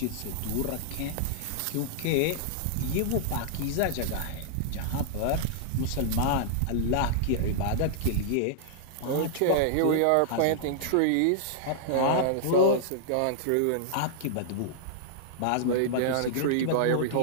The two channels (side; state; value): both; different; correlation -0.01